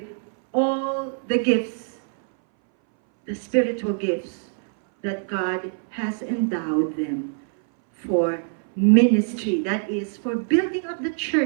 all the gifts, the spiritual gifts that God has endowed them for ministry, that is, for building up the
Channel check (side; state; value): left; silent; 60 dB below the other